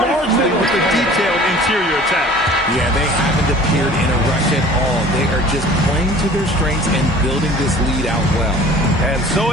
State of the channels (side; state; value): both; normal; correlation 0.47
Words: with a detailed interior attack. Yeah, they haven't appeared in a rush at all. They are just playing to their strengths and building this lead out well. And so